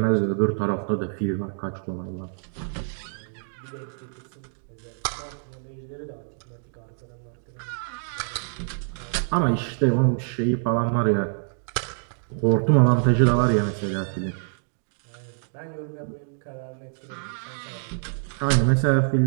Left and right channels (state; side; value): silent; left; digital silence